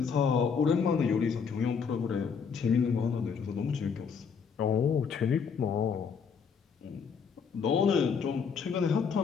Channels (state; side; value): quieter; right; 6.2 dB